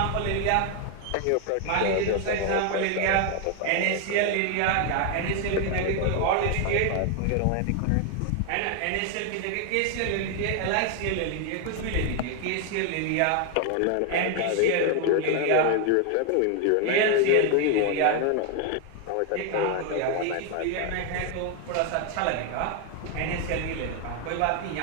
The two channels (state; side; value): different; both; correlation 0.01